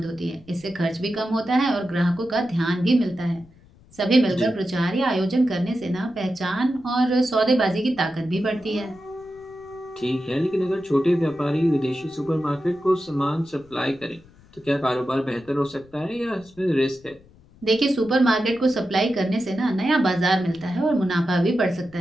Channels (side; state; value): left; noise; rumble, 27 dB below the sound